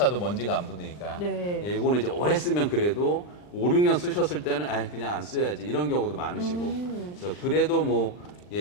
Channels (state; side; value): late; right; 39 ms